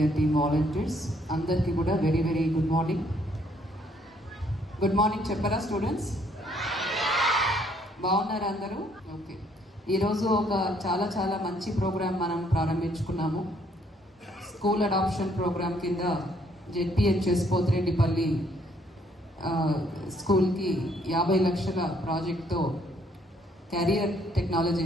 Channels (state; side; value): normal; both; correlation 0.67